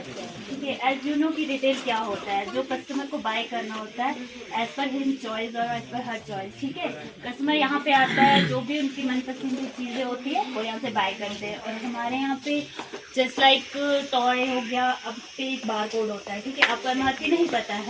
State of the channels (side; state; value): both; identical; correlation 1.00